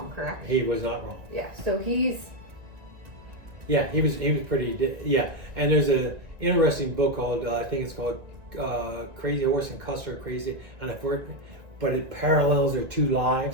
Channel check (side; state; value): left; late; 1.9 ms